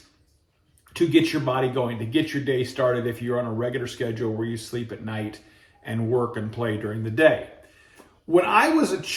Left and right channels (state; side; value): identical; both; correlation 1.00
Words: to get your body going, to get your day started if you're on a regular schedule where you sleep at night and work and play during the day. When I was a